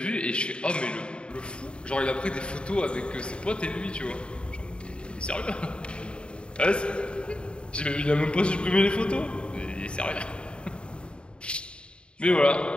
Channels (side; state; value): right; late; 0.054 ms